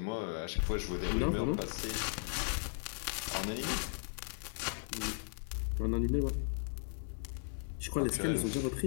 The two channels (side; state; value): right; silent; 53 dB below the other